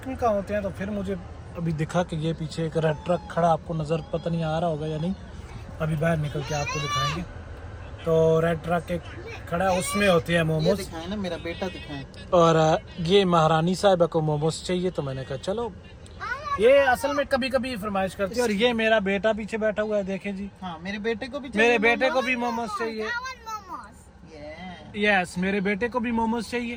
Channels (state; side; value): identical; both; correlation 1.00